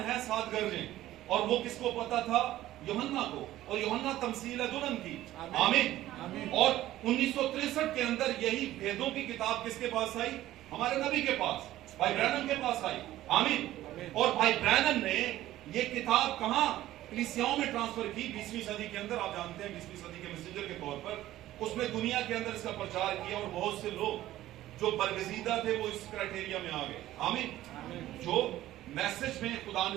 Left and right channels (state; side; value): quieter; left; 14.6 dB